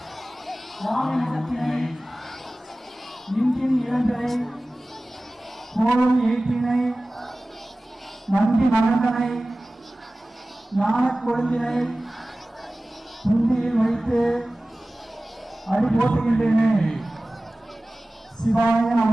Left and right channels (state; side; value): normal; both; correlation 0.97